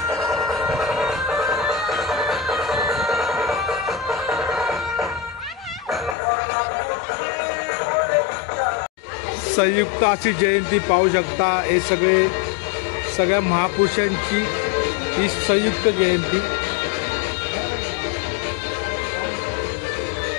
संयुक्त अशी जयंती पाहू शकता। हे सगळ्या महापुरुषांची ही संयुक्त जयंती।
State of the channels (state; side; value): drops out; right; at 6.2 s